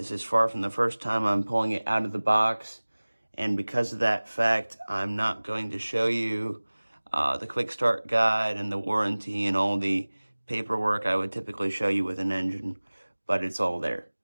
is far from the first time I'm pulling it out of the box, and because of that fact, I'm not going to show you the quick start guide and the warranty and all the paperwork I would typically show you with an engine, but it's all there.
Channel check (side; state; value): both; inverted; correlation -1.00